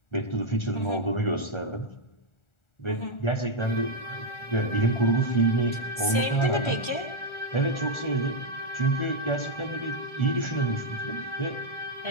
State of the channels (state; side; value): late; right; 1.4 ms